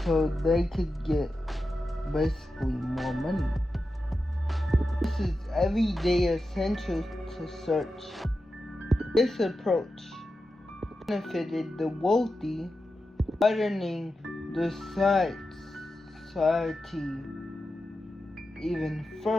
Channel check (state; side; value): normal; both; correlation 0.91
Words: so they could get basically more money. This is everyday essential to search. This approach benefited the wealthy, widening the society even